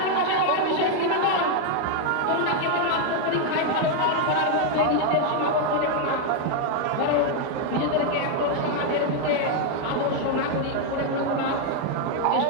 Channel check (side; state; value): both; different; correlation 0.00